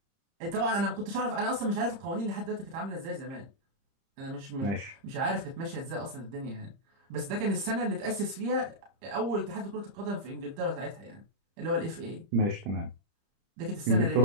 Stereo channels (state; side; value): late; left; 30 ms